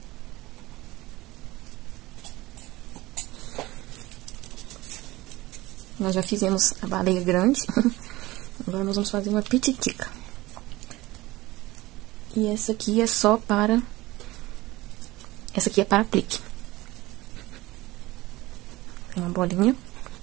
Nós já fizemos a baleia grande. Agora nós vamos fazer uma pititica. E essa aqui é só para... Essa aqui é para aplique. Tem uma bolinha.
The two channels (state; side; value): quieter; left; 19.1 dB